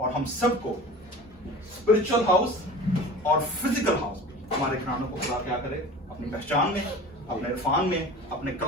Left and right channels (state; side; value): normal; both; correlation 0.38